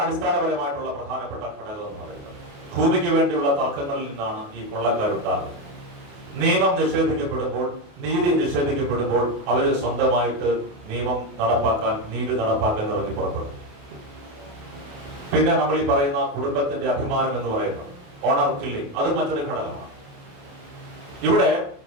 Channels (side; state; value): left; late; 28 ms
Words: അടിസ്ഥാനപരമായിട്ടുള്ള പ്രധാനപ്പെട്ട ഘടകം എന്ന് പറയുന്നത്. ഭൂമിക്ക് വേണ്ടിയുള്ള തർക്കങ്ങളിൽ നിന്നാണ് ഈ കൊള്ളക്കാരുണ്ടാകുന്നത്. നിയമം നിഷേധിക്കപ്പെടുമ്പോൾ, നീതി നിഷേധിക്കപ്പെടുമ്പോൾ അവര് സ്വന്തമായിട്ട് നിയമം നടപ്പാക്കാൻ, നീതി നടപ്പാക്കാൻ ഇറങ്ങി പുറപ്പെടും. പിന്നെ നമ്മൾ ഈ പറയുന്ന കുടുംബത്തിന്റെ അഭിമാനം എന്ന് പറയുന്നത് ഓണർ കില്ലിംഗ്, അത് മറ്റൊരു ഘടകമാണ്. ഇവിടെ